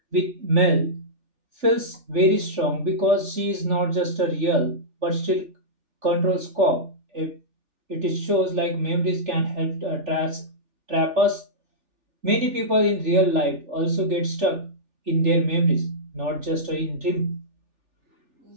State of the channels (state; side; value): late; left; 3.4 ms